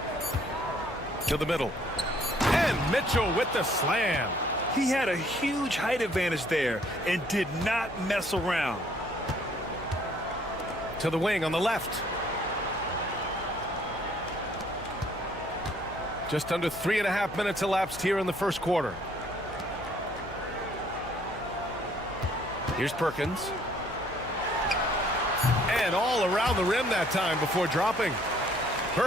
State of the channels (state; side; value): noise; left; hum, 16 dB below the sound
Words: To the middle. And Mitchell with the slam. He had a huge height advantage there and did not mess around. To the wing on the left. Just under 3.5 minutes elapsed here in the first quarter. Here's Perkins. And all around the rim that time before dropping.